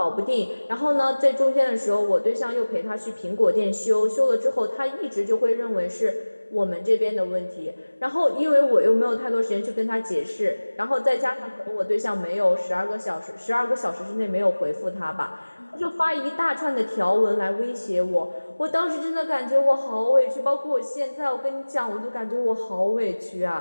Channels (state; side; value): inverted; both; correlation -1.00